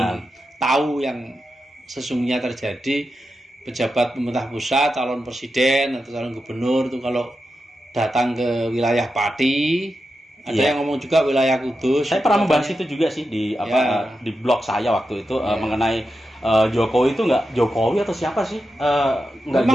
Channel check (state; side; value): normal; both; correlation 0.89